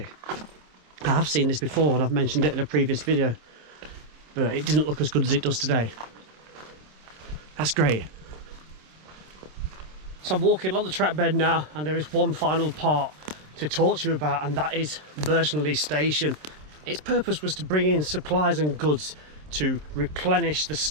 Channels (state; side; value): late; left; 27 ms